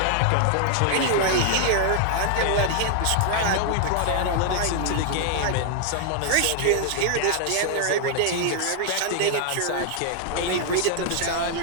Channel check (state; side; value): different; both; correlation 0.00